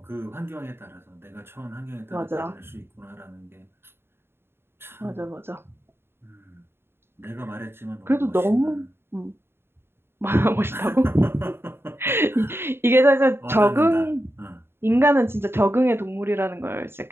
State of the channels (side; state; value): left; late; 0.11 ms